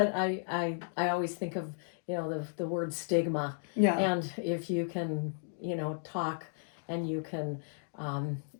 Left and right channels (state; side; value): silent; right; digital silence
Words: I always think of, the word stigma. Yeah. And if you can, talk and you can